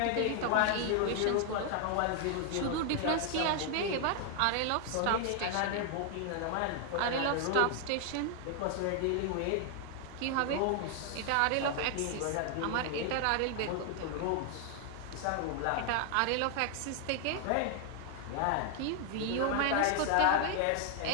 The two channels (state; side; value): different; both; correlation 0.00